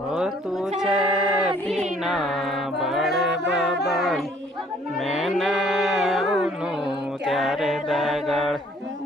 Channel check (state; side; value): normal; both; correlation 0.60